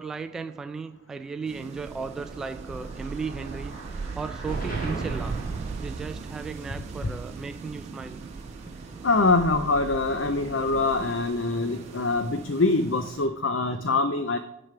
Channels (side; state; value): both; normal; correlation 0.11